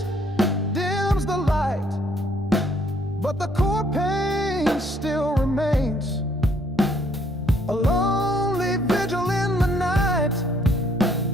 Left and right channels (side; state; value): both; normal; correlation 0.66